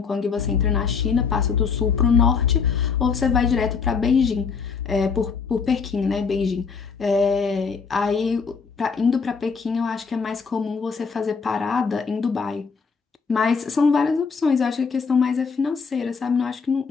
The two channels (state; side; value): quieter; right; 5.5 dB